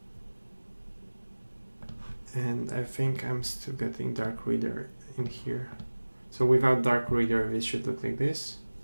And I think I'm still getting dark reader in here. So without dark reader, this should look like this.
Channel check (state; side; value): inverted; both; correlation -1.00